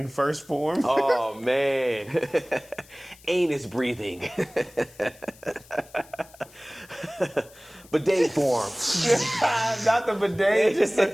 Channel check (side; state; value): left; noise; hiss, 24 dB below the sound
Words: first form. Oh, man. Anus breathing. Bidet form. Not the bidet, just